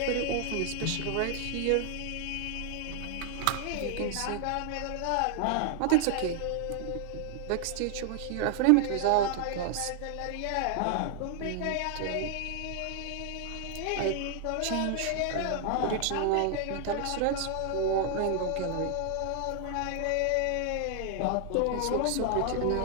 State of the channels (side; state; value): both; different; correlation 0.00